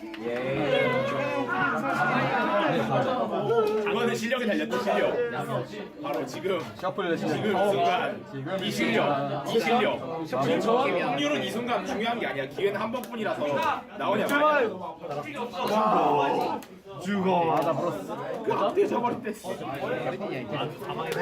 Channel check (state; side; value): identical; both; correlation 1.00